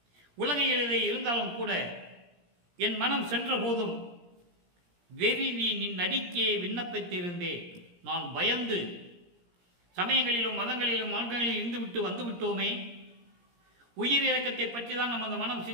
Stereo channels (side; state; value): left; late; 17 ms